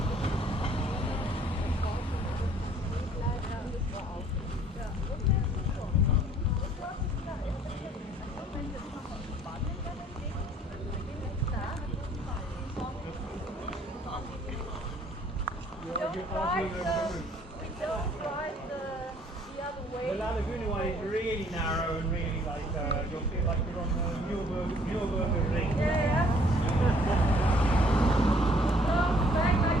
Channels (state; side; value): normal; both; correlation 0.60